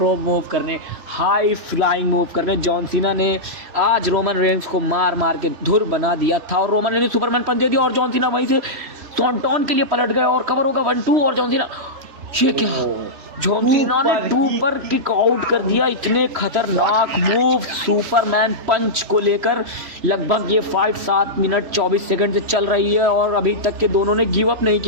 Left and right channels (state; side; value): late; left; 3.1 ms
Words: रोप मूव करने, हाई फ्लाइंग मूव करने। जॉन सीना ने आज रोमन रेंज को मार मार के धुर बना दिया था और रोमन रेंज ने सुपरमैन पंच दे दिया और जॉन सीना वहीं से सॉन्टॉन के लिए पलट गए और कवर होगा 1-2 और जॉन सीना, ये क्या, जॉन सीना ने 2 पर किक आउट कर दिया। इतने खतरनाक मूव सुपरमैन पंच को लेकर लगभग ये फाइट 7 मिनट 24 सेकंड से चल रही है और अभी तक के दोनों ने गिव अप नहीं